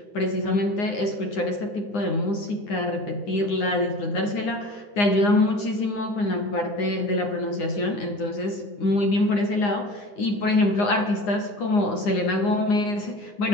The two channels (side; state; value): right; late; 9.8 ms